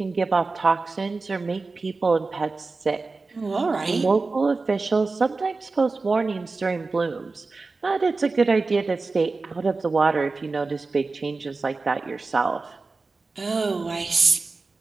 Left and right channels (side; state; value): left; quieter; 3.9 dB